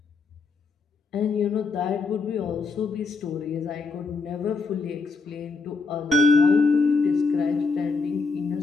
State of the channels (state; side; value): quieter; right; 4.3 dB